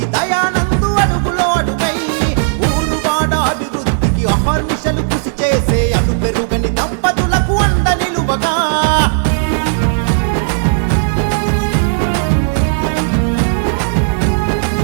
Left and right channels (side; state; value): left; silent; digital silence